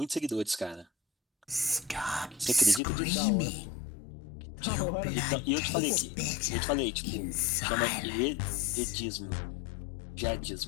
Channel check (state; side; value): drops out; right; at 2.8 s